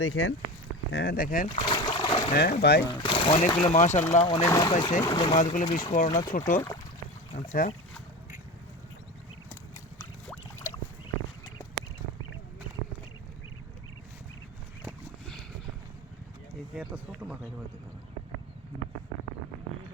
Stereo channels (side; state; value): both; normal; correlation 0.27